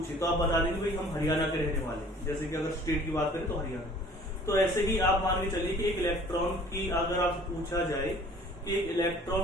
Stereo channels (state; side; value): normal; both; correlation 0.51